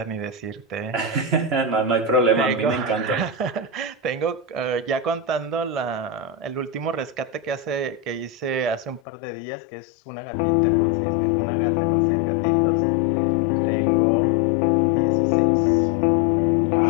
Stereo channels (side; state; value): right; drops out; at 9.0 s